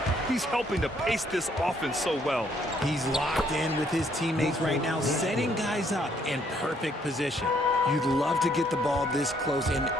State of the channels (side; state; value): both; normal; correlation 0.68